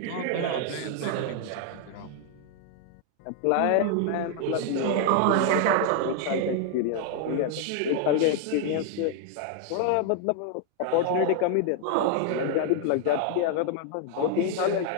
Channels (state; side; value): different; both; correlation 0.00